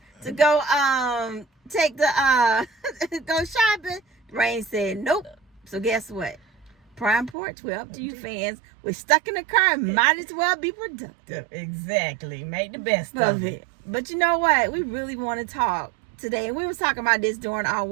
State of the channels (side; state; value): left; drops out; at 7.4 s